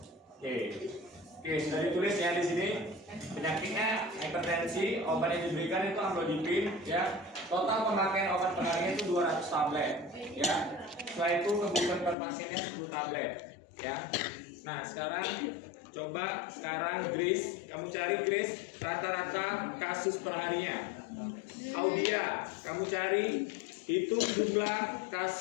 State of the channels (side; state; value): right; drops out; at 12.2 s